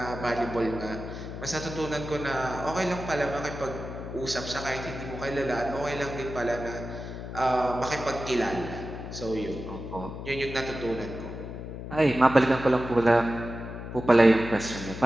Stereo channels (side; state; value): left; noise; hum, 9 dB below the sound